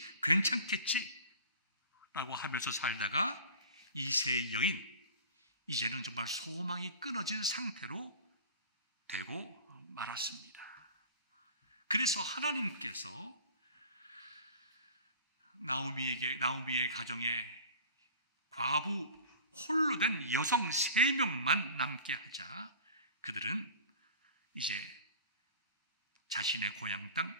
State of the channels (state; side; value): inverted; both; correlation -0.40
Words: 라고 하면서 살다가 이세의 여인, 이제는 정말 소망이 끊어진 상태로 되고 말았습니다. 그래서 하나님께서 나오미의 가정에 과부 홀로 된 여성 3명만 남게 하자 그들은 이제 자신의 고향 땅